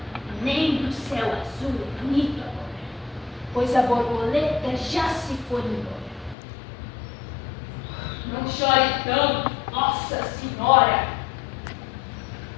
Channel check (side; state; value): right; drops out; at 6.4 s